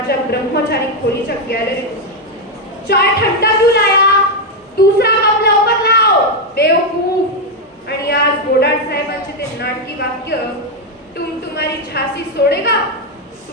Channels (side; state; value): both; normal; correlation 0.04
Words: ब्रह्मचारी खोलीच्या गॅलरीत चाय ठंडा पिऊ लाया, दुसरा कप लवकर लाव बेवकूफ. आणि आज गोडाड साहेबांचे ते नाटकी वाक्य, तुम तुम्हारी झाशी सोडेगा,